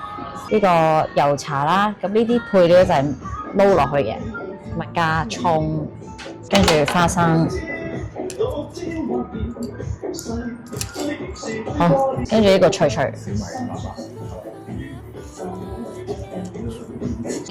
呢個油茶啦，咁呢啲配料就係撈落去嘅，咪加葱，跟住花生，好，跟住呢個脆脆，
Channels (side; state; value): both; identical; correlation 1.00